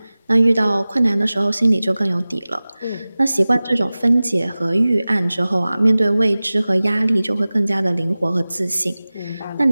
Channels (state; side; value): inverted; both; correlation -0.98